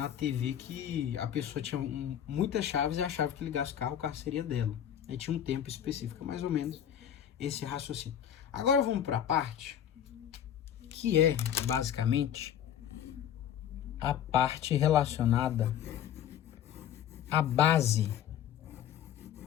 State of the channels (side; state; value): right; quieter; 9.9 dB